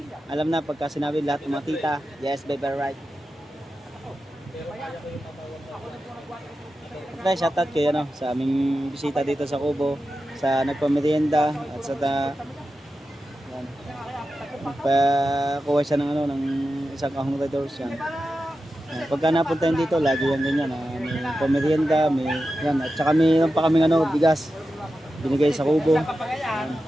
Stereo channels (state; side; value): normal; both; correlation 0.91